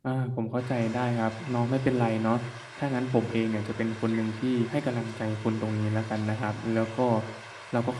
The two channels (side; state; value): both; identical; correlation 1.00